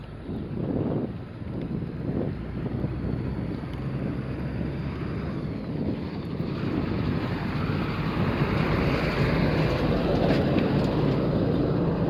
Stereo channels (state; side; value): identical; both; correlation 1.00